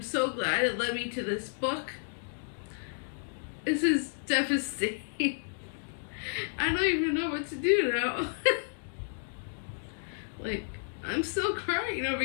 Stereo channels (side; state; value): right; silent; digital silence